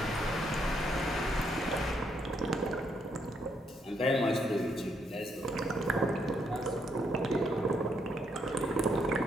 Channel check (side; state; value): both; normal; correlation 0.75